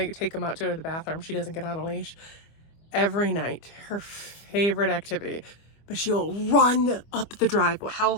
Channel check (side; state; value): right; late; 25 ms